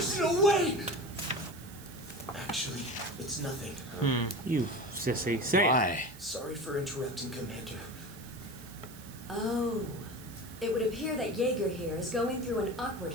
no way! Actually, it's nothing. You sissy. Say it. Why? Sorry for interrupting, Commander. Oh. It would appear that Jaeger here is going through an awkward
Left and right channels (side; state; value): right; noise; hiss, 19 dB below the sound